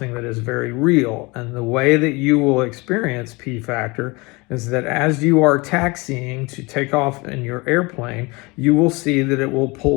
that is very real. And the way that you will experience P factor is that as you are taxiing to take off in your airplane, you will see that it will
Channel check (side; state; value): right; quieter; 25.5 dB